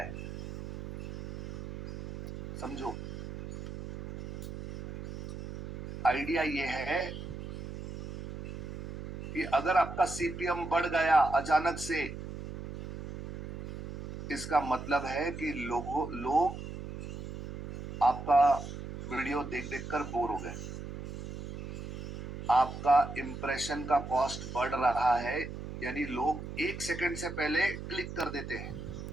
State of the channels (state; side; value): noise; right; hum, 9 dB below the sound